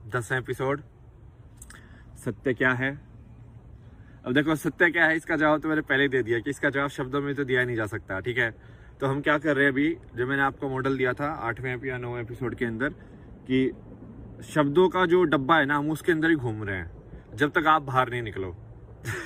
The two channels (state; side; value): identical; both; correlation 1.00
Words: 10वां एपिसोड। सत्य क्या है। अब देखो, सत्य क्या है इसका जवाब तो मैंने पहले ही दे दिया कि इसका जवाब शब्दों में तो दिया नहीं जा सकता। ठीक है, तो हम क्या कर रहे हैं अभी, जो मैंने आपको मॉडल दिया था 8वें या 9वें एपिसोड के अंदर, कि शब्दों का जो डब्बा है ना, हम उसके अंदर ही घूम रहे हैं जब तक आप बाहर नहीं निकलो।